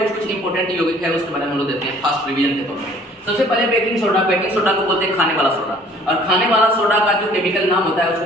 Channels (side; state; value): both; normal; correlation 0.54